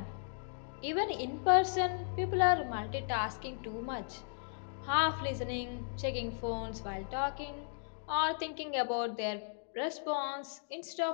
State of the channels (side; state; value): right; silent; digital silence